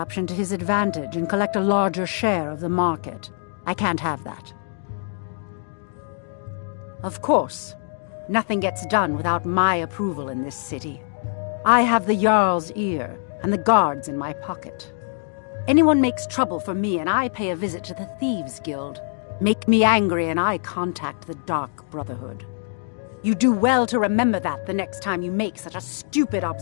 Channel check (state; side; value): silent; right; digital silence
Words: to his advantage and collect a larger share of the market. I can't have that. Of course, nothing gets done without my approval in this city. I have the Jarl's ear and the guards in my pocket. Anyone makes trouble for me and I pay a visit to the Thieves' Guild. Make me angry and I contact the Dark Brotherhood. You do well to remember that the next time you make such a stupid